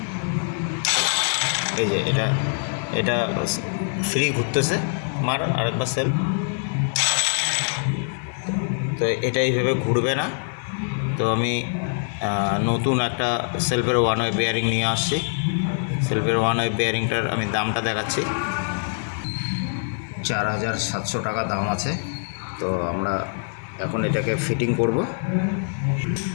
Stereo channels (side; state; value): right; silent; digital silence